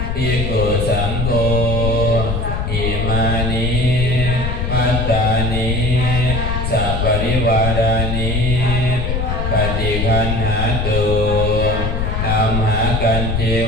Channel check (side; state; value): left; noise; rumble, 1 dB below the sound